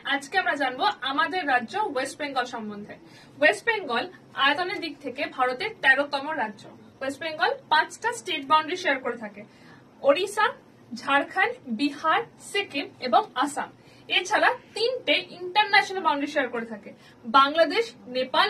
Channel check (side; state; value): both; identical; correlation 1.00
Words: আজকে আমরা জানবো আমাদের রাজ্য ওয়েস্ট বেঙ্গল সম্বন্ধে। ওয়েস্ট বেঙ্গল আয়তনের দিক থেকে ভারতের 13তম রাজ্য। ওয়েস্ট বেঙ্গল 5টা স্টেট বাউন্ডারি শেয়ার করে থাকে: ওড়িশা, ঝাড়খণ্ড, বিহার, সিকিম এবং আসাম। এছাড়া 3টে ইন্টারন্যাশনাল বাউন্ডারি শেয়ার করে থাকে: বাংলাদেশ, নেপাল